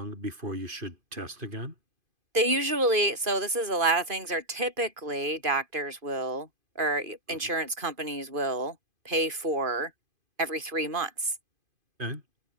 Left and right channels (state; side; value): late; left; 2.5 ms